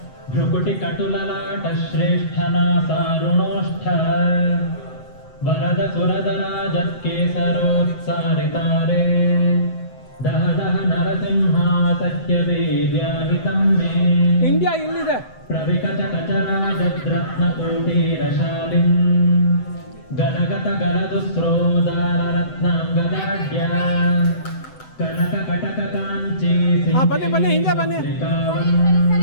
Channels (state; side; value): late; right; 7.9 ms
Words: ಭ್ರುಕುಟಿ ಕಟುಲಲಾಟ ಶ್ರೇಷ್ಠನಾ ಸಾರುಣೋಷ್ಠ ವರದ ಸುರದರಾಜತ್ಕೇಸರೋತ್ಸಾರಿತಾರೆ ದಹ ದಹ ನರಸಿಂಹಾ ಸತ್ಯವೀರ್ಯಾಹಿತಂ ಮೇ ಇಂಡಿಯಾ ಇಲ್ಲಿದೆ ಪ್ರವಿಕಟ ಕಚರಾಜದ್ರತ್ನಕೋಟೀರಶಾಲಿಂ ಗಲಗತ ಗಲದುಸ್ರೋದಾರರತ್ನಾಂಗದಾಢ್ಯ ಕನಕ ಕಟಕ ಕಾಂಚಿ ಬನ್ನಿ ಬನ್ನಿ ಹಿಂದೆ ಬನ್ನಿ